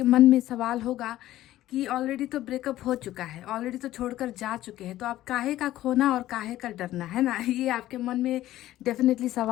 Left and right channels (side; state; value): right; quieter; 14.5 dB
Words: मन में सवाल होगा कि ऑलरेडी तो ब्रेकअप हो चुका है, ऑलरेडी तो छोड़कर जा चुके हैं, तो आप काहे का खोना और काहे का डरना, है ना? ये आपके मन में डेफिनेटली